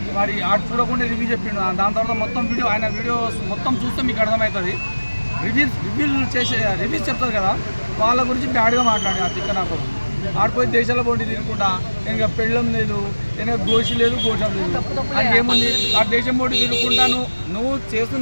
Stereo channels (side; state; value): both; inverted; correlation -1.00